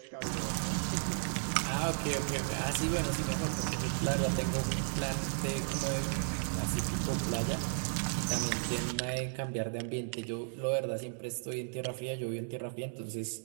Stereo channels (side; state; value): left; silent; digital silence